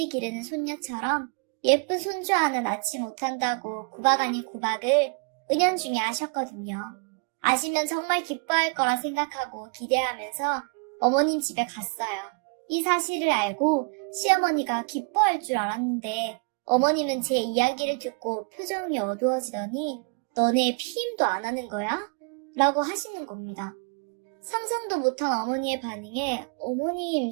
기르는 손녀처럼 예쁜 손주 하나 낳지 못한다고 구박 아닌 구박을 은연중에 하셨거든요. 아시면 정말 기뻐할 거라 생각하고 기대하면서 어머님 집에 갔어요. 이 사실을 알고 시어머니가 기뻐할 줄 알았는데 어머님은 제 이야기를 듣고 표정이 어두워지더니 너네 피임도 안 하는 거야? 라고 하시는 겁니다. 상상도 못한 어머니의 반응에 어머님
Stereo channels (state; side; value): quieter; left; 37.0 dB